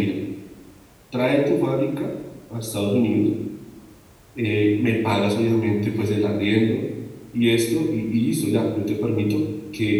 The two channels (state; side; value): identical; both; correlation 1.00